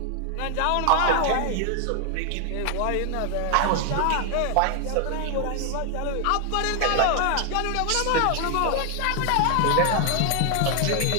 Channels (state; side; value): different; both; correlation 0.00